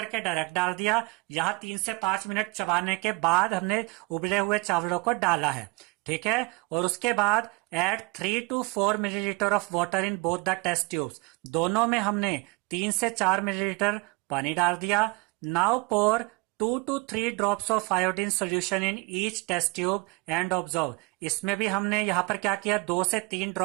डायरेक्ट डाल दिया, यहां 3 से 5 मिनट चबाने के बाद हमने उबले हुए चावलों को डाला है। ठीक है। और उसके बाद add 3 to 4 millilitre of water in both the test tubes. दोनों में हमने 3 से 4 मिलीलीटर पानी डाल दिया। Now pour 2 to 3 drops of iodine solution in each test tube and observe. इसमें भी हमने यहाँ पर क्या किया, 2 से 3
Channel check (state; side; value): quieter; left; 27.2 dB